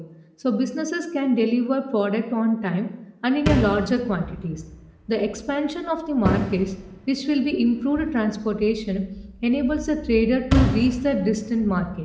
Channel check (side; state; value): both; identical; correlation 1.00